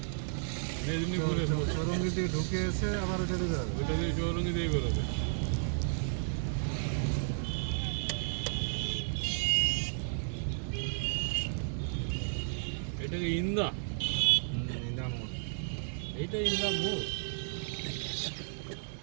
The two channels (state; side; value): silent; left; 56 dB below the other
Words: মেদিনীপুরে চৌরঙ্গি দিয়ে ঢুকে এসে আবার ওটা দিয়ে যাবে। ওইটা দিয়ে চৌরঙ্গি দিয়ে বেরোবে। এটাকে ইন্দা, ইন্দ্রামোড়। এইটা ইন্দা মোড়।